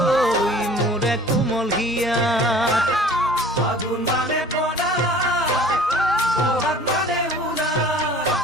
মোরে কোমল হিয়া ফাগুন মানে পনা বহাগ মানে উলা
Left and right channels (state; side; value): normal; both; correlation 0.47